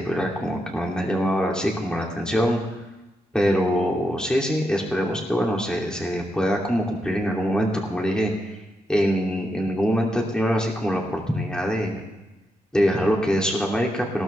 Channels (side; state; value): both; normal; correlation 0.84